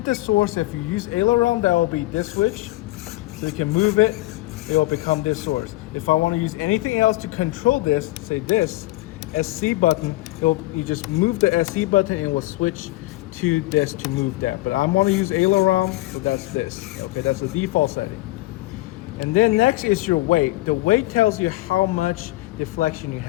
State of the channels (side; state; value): right; quieter; 19.0 dB